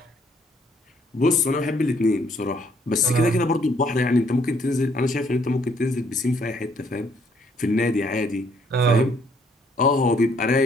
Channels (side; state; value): both; normal; correlation 0.67